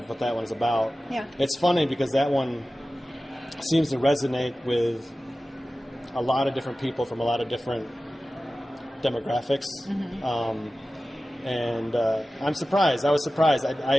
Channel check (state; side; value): normal; both; correlation 0.95